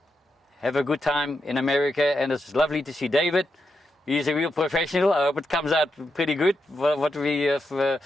Have a good time in America, and it's lovely to see David. He's a real professional. I hope it comes out pretty good. What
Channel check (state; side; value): normal; both; correlation 0.85